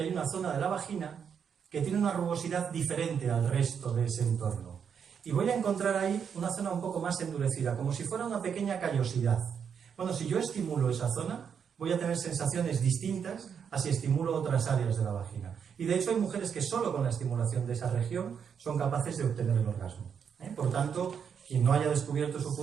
hay una zona de la vagina que tiene una rugosidad diferente al resto de ese entorno. Y voy a encontrar ahí una zona un poco más endurecida, como si fuera una pequeña callosidad. Bueno, si yo estimulo esa zona, voy a tener sensaciones distintas a si estimulo otras áreas de la vagina. Y de hecho hay mujeres que solo con la estimulación de esa región son capaces de obtener el orgasmo. Por tanto, quien no haya descubierto su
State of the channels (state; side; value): quieter; left; 7.2 dB